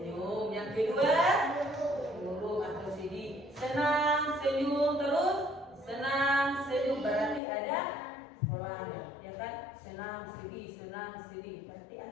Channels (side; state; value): right; drops out; at 7.4 s